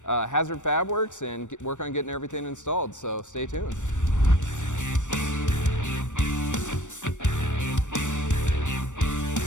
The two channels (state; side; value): late; right; 0.85 ms